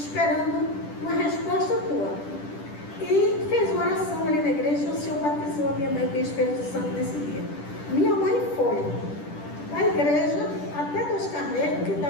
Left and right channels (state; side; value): late; right; 10 ms